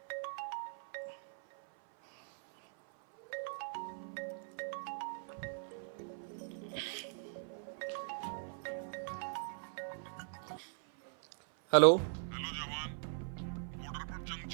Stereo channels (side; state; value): left; silent; 51 dB below the other